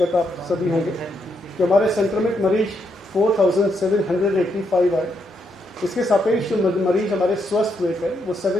आप सभी होंगे कि हमारे संक्रमित मरीज 4,785 आए। इसके सापेक्ष जो मरीज हमारे स्वस्थ हुए थे वो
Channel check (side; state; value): both; normal; correlation 0.79